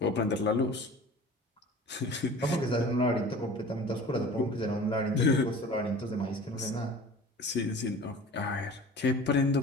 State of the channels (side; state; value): both; normal; correlation 0.41